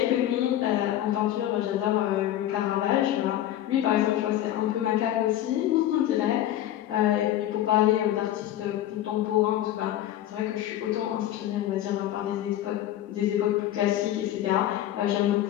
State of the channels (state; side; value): quieter; right; 12.7 dB